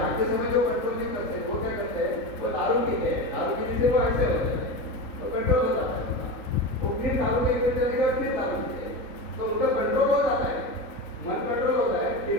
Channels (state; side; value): late; right; 3.5 ms